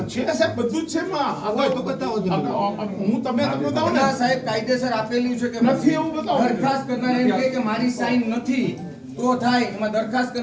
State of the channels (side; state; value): both; identical; correlation 1.00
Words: નથી છે સાહેબ, બધું જ છે માં. હોય તો બતાવો તમે. હું તમને તો બતાવું ને. ના સાહેબ, કાયદેસર આપેલું છે કે નથી એવું બતાવો. દરખાસ્ત કરનારે એમ કહે કે મારી સાઈન નથી તો થાય. એમાં દરખાસ્ત